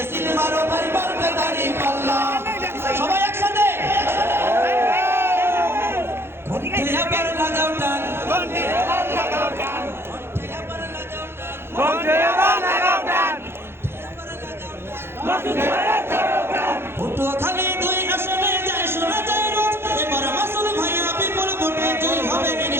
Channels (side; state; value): left; late; 0.11 ms